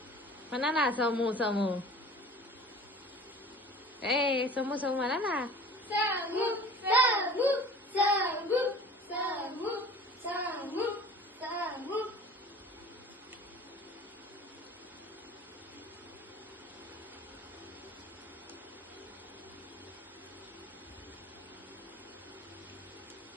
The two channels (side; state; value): both; normal; correlation 0.43